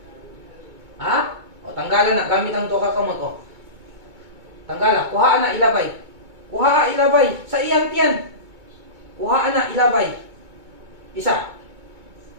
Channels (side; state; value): left; late; 2.2 ms